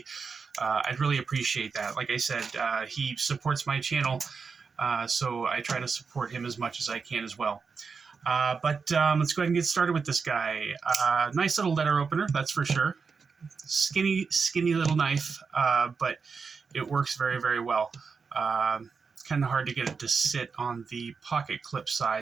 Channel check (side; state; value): left; quieter; 5.3 dB